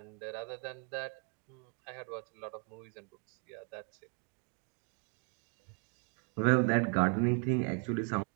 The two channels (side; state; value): left; quieter; 39.2 dB